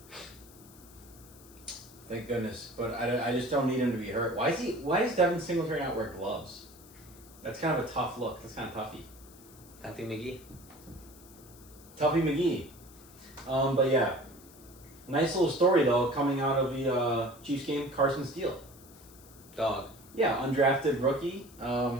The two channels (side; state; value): left; noise; hiss, 22 dB below the sound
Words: thank goodness. But I just don't need him to be hurt. Why does Devin Singletary not wear gloves? That's kind of a tough look. That's kind of toughy. Tuffy McGee. Tuffy McGee. But yeah. Nice little story though coming out of the Chiefs game. Carson Steele. Dog. Yeah, undrafted rookie.